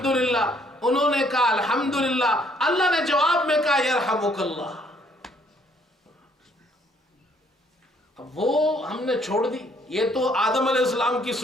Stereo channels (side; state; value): both; normal; correlation 0.65